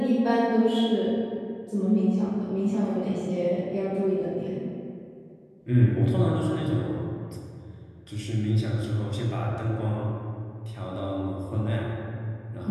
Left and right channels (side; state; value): both; identical; correlation 1.00